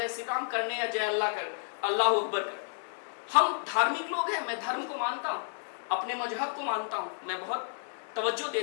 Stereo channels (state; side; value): silent; right; digital silence